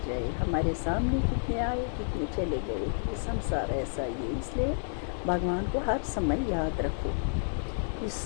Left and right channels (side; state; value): right; silent; digital silence